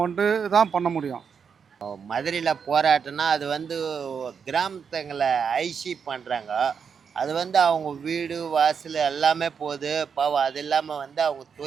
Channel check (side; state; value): left; quieter; 6.5 dB